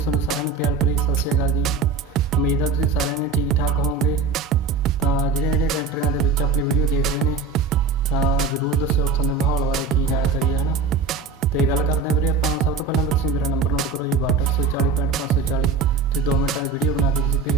ਸਾਰਿਆਂ ਨੂੰ ਪਿਆਰ ਭਰੀ ਸਤਿ ਸ਼੍ਰੀ ਅਕਾਲ ਜੀ। ਉਮੀਦ ਹੈ ਤੁਸੀਂ ਸਾਰਿਆਂ ਨੇ ਠੀਕ ਠਾਕ ਹੋਵੋਗੇ। ਤਾਂ ਜਿਹੜੇ ਕੰਟਰੀਆਂ ਦੇ ਵਿੱਚ ਆਪਣੀ ਵੀਡੀਓ ਦੇਖ ਰਹੇ ਨੇ ਤਾਂ ਜ਼ਰੂਰ ਦੱਸਿਓ ਉੱਥੋਂ ਦੇ ਮਾਹੌਲ ਬਾਰੇ ਕੀ ਜਾਣਕਾਰੀ ਹੈ ਨਾ। ਤੇ ਗੱਲ ਕਰਦੇ ਹਾਂ ਵੀਰੇ ਆਪਾਂ। ਸਭ ਤੋਂ ਪਹਿਲਾਂ ਤੁਸੀਂ ਮੇਰਾ ਨੰਬਰ ਨੋਟ ਕਰੋ ਜੀ 6240 ਤੁਸੀਂ 2 ਮਿੰਟਾਂ ਦੀ ਵੀਡੀਓ ਬਣਾ ਕੇ ਤੁਸੀਂ ਭੇਜ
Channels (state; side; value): quieter; left; 4.4 dB